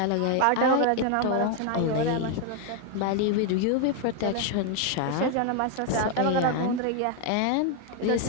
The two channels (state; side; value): different; both; correlation 0.00